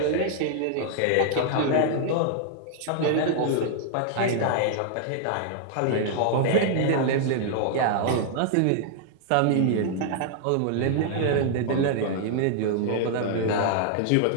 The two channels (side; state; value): both; different; correlation 0.00